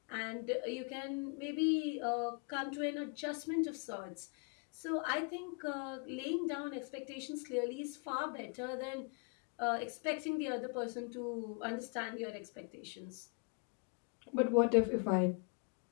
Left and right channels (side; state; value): right; quieter; 37.6 dB